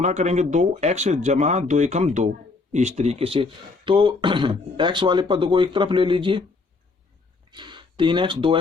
करेंगे, 2x जमा 2 एकम 2, इस तरीके से। तो x वाले पद को एक तरफ ले लीजिए, 3x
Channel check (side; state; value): right; quieter; 3.9 dB